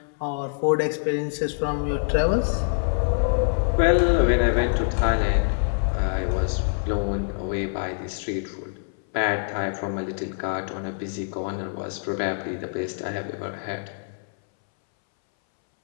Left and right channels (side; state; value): right; silent; 61 dB below the other